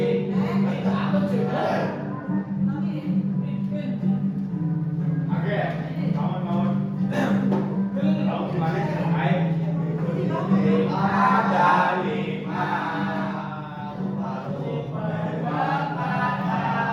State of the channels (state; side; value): identical; both; correlation 1.00